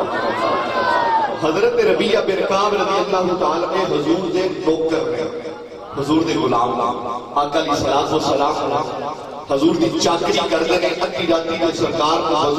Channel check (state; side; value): identical; both; correlation 1.00